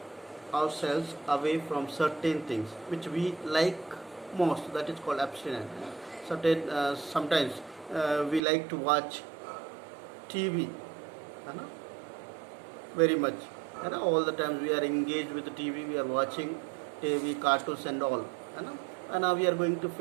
ourselves away from certain things which we like most. That is called abstinence. Sometimes we like to watch TV, very much. All the times we are engaged with the TV, we are watching TV, cartoons and all. And now we are going to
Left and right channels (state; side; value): drops out; left; at 8.4 s